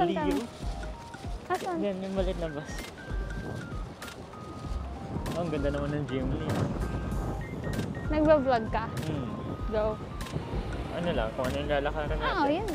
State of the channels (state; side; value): identical; both; correlation 1.00